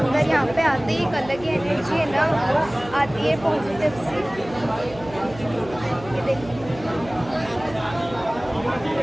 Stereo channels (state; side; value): noise; right; hum, 17 dB below the sound